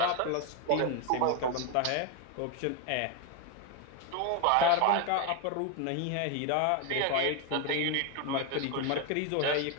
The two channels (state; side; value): different; both; correlation 0.01